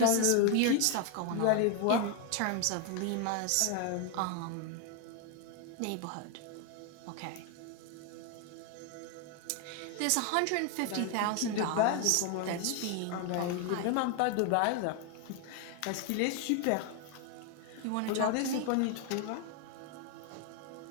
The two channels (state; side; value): different; both; correlation 0.01